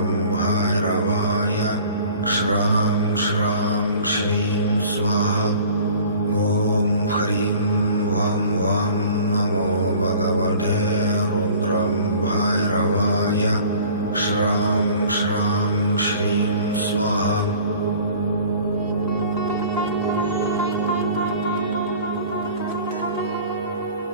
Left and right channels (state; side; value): inverted; both; correlation -0.47